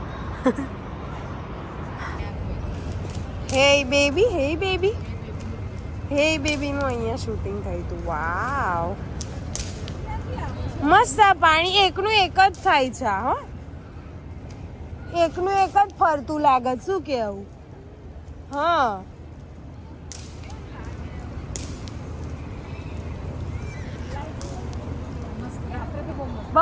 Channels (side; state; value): both; identical; correlation 1.00